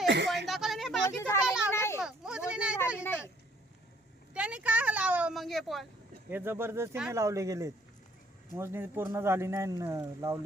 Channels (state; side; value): normal; both; correlation 0.62